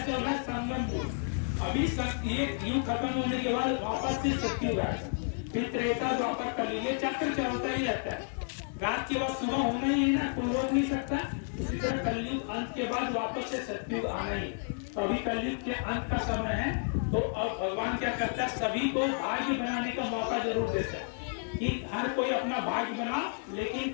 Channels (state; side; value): silent; right; 57 dB below the other